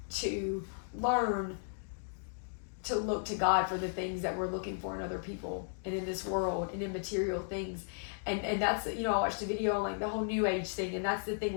to learn to look to God for the things that we're looking for in other people and in this world and in material things. And that's, I watched a video on like the whole New Age thing, and that's the thing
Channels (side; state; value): right; silent; digital silence